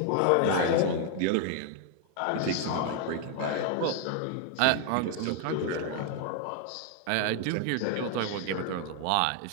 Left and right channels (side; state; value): both; different; correlation 0.00